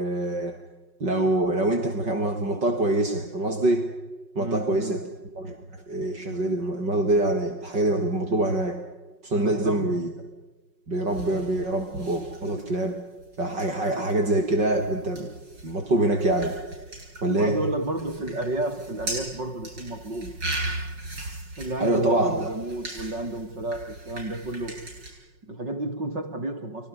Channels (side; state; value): left; late; 5.4 ms